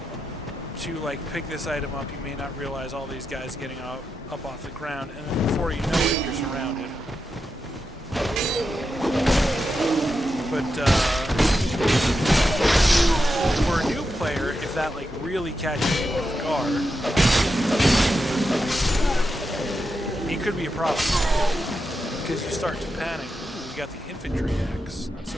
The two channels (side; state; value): both; normal; correlation 0.87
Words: to like pick this item up, you may not realize all these guys getting up off the ground, and then before you know it, you're surrounded. But for a new player, if that like really catches you off guard, it could be a problem because you start to panic. Ooh, we got the infantry axe. That's